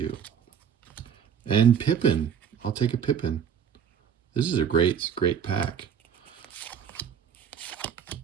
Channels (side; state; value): left; quieter; 8.0 dB